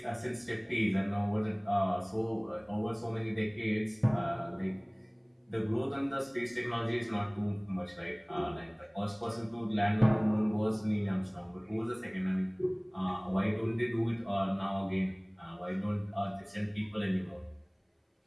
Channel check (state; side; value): identical; both; correlation 1.00